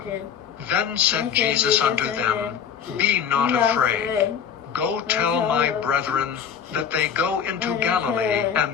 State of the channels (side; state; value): right; quieter; 7.8 dB